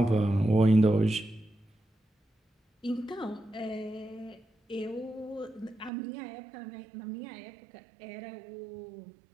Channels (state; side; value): drops out; left; at 5.9 s